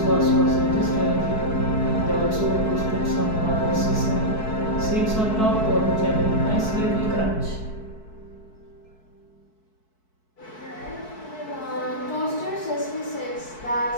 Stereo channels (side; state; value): right; late; 4.6 ms